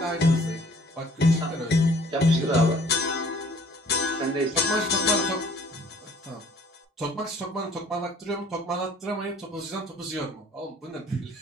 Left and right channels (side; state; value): both; normal; correlation 0.55